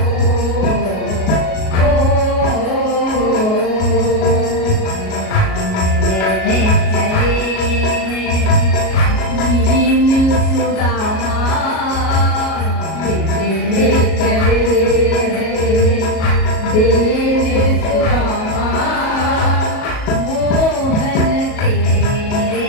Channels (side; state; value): right; late; 37 ms